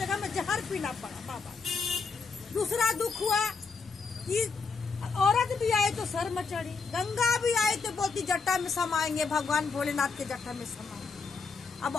में जहर पीना पड़ा बाबा। दूसरा दुख हुआ कि औरत भी आए तो सर में चढ़ी, गंगा भी आए तो बोलती जटा में समाएंगे, भगवान भोलेनाथ के जटा में समाएंगे। अब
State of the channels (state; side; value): quieter; right; 4.8 dB